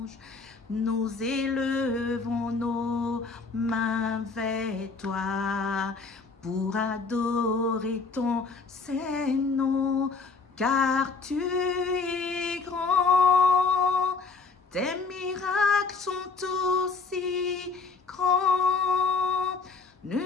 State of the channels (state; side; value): quieter; right; 4.5 dB